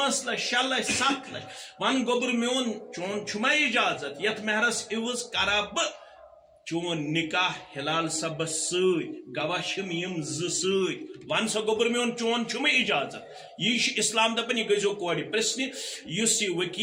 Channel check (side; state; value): both; identical; correlation 1.00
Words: لچھ 6 لچھ 7 لچھ. ون گوٚبُر میون چون چھُما اجازت یتھ مہرس عوض کرا بہٕ چون نکاح ہلال صبس سۭتۍ گواہ چھِم یِم 2 سۭتۍ. ون سا گوٚبُر میون چون چھُمے اجازت. یی چھُ اسلام دپان یہِ گٔژھزیٚو کورِ پرژھنہِ. یُس یہِ